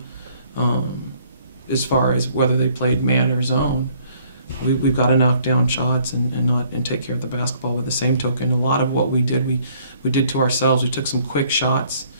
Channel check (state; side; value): inverted; both; correlation -0.62